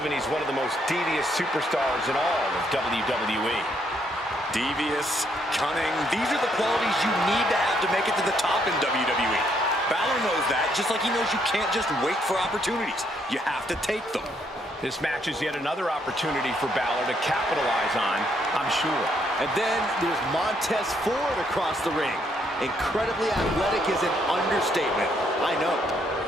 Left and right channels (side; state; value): both; normal; correlation 0.72